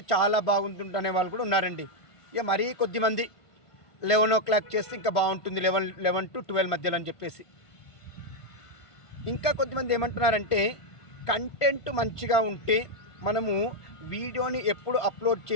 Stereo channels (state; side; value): late; right; 1.5 ms